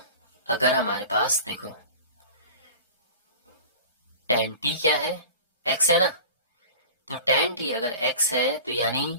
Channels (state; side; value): inverted; both; correlation -0.39